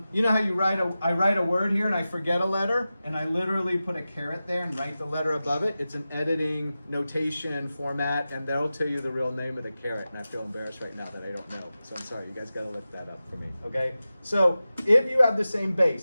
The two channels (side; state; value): both; inverted; correlation -0.94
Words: know how I write a word here and I forget a letter, and I literally put a caret there and write the letter above it. It's an editing notation format, and that'll tell you the real name of the caret. And I feel embarrassed right now that I don't know, so I'm sorry. You guys got to look that up for me, okay? So if you have the same